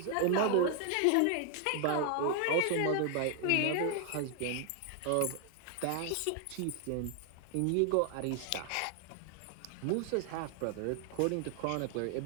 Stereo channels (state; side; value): different; both; correlation 0.00